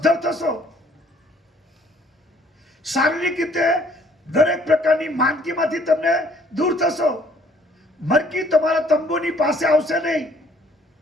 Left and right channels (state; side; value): normal; both; correlation 0.60